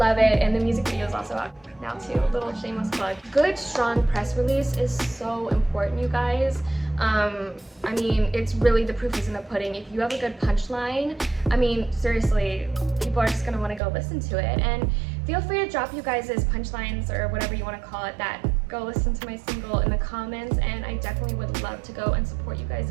it. And the music video is also out now too. Little shameless plug. Good, strong press release is so important, you guys. I mean, it's really, the proof is in the pudding. If you have a good punchline, I mean, seriously, people are just gonna wanna go listen to it. And feel free to drop you guys' punchlines or whatever you wanna call it, that go listen to my single in the comments, and I definitely would love to go and support you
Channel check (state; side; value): drops out; left; at 13.8 s